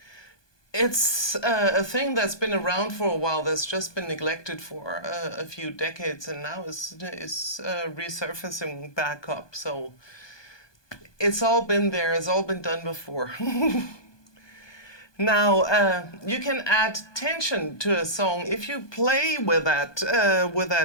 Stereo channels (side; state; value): right; late; 1.2 ms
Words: it's a thing that's been around for a while, that's just been neglected for a few decades, and now is resurfacing back up. So it's all been there, it's all been done before. Now you can add tension to a song if you play with